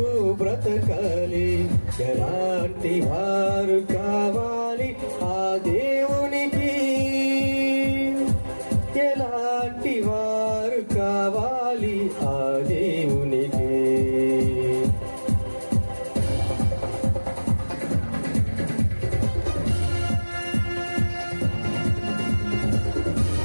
బ్రతకాలి. ఎలాంటి వారు కావాలి ఆ దేవునికి, ఎలాంటి వారు కావాలి ఆ దేవునికి.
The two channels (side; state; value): both; inverted; correlation -1.00